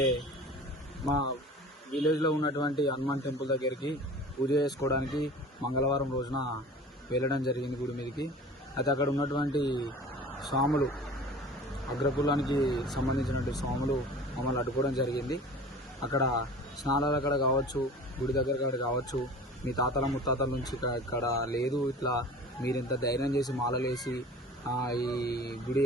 మా విలేజ్లో ఉన్నటువంటి హనుమాన్ టెంపుల్ దగ్గరికి పూజ చేసుకోవడానికి మంగళవారం రోజున వెళ్ళడం జరిగింది గుడి మీదకి. అయితే అక్కడ ఉన్నటువంటి స్వాములు, అగ్రకులానికి సంబంధించినటువంటి స్వాములు మమ్మల్ని అడ్డుకోవడం జరిగింది. అక్కడ స్నానాలు అక్కడ కావచ్చు, గుడి దగ్గర కాడ కావచ్చు, మీ తాతల ముత్తాతల నుంచి ఇక్కడ లేదు, ఇట్లా మీరు ఇంత ధైర్యం చేసి మాలలేసి ఈ గుడి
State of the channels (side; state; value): both; normal; correlation 0.41